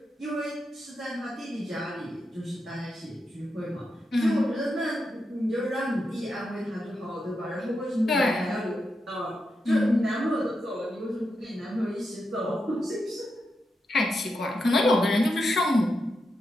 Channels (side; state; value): both; normal; correlation 0.86